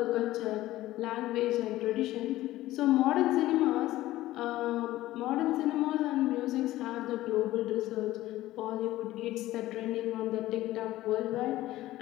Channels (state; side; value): quieter; right; 15.9 dB